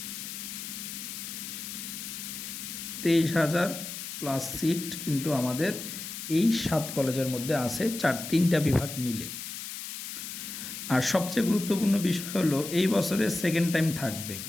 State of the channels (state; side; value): noise; left; hiss, 8 dB below the sound